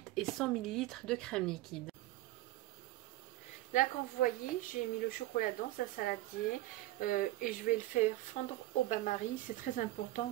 et 100 ml de crème liquide. Là, comme vous voyez, j'ai mis le chocolat dans un saladier et je vais le faire fondre au bain-marie. C'est très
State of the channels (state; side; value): quieter; left; 16.9 dB